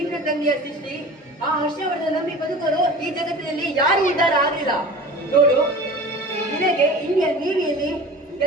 ತಂದೆಯ ಸೃಷ್ಟಿ ಆ ಹರ್ಷವರ್ಧನ ನಂಬಿ ಬದುಕರು ಈ ಜಗತ್ತಿನಲ್ಲಿ ಯಾರು ಉದ್ಧಾರ ಆಗಲಿಲ್ಲ. ನೋಡು, ನಿನಗೆ ಇಂಡಿಯನ್ ನೇವಿಯಲ್ಲಿ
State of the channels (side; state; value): both; normal; correlation 0.38